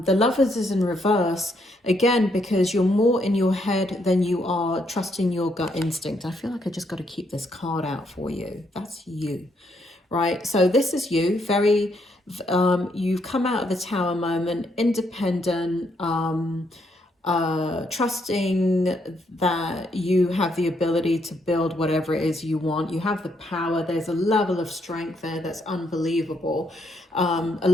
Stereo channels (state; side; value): normal; both; correlation 0.74